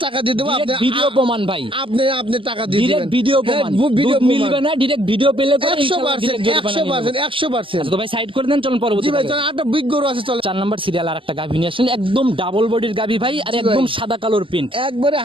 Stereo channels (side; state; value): left; late; 0.25 ms